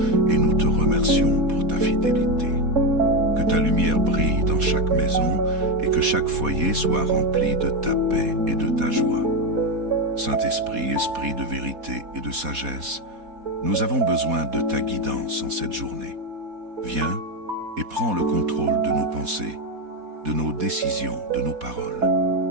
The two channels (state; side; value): late; left; 4.1 ms